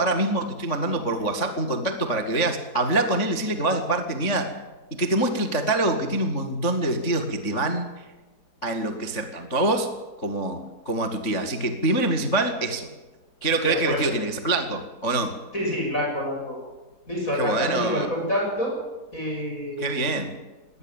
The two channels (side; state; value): right; late; 3.6 ms